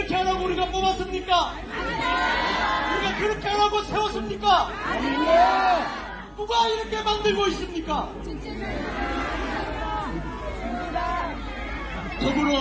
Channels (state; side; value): identical; both; correlation 1.00